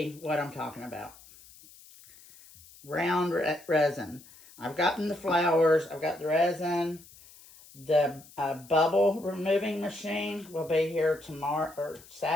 what I'm talking about. Round resin. I've gotten the flowers. I've got the resin. The bubble removing machine will be here tomorrow or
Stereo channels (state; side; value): noise; left; hiss, 22 dB below the sound